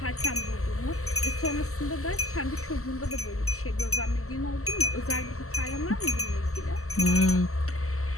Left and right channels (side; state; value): right; late; 0.64 ms